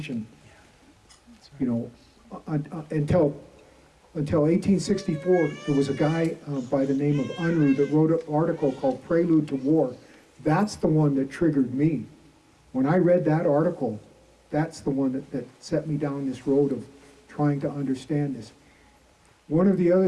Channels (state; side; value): identical; both; correlation 1.00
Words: until 1864. There was a guy by the name of Unruh that wrote an article called Prelude to War. That's the one that triggered me. When I read that article, that's the one that set me down this road of trying to understand this. One of the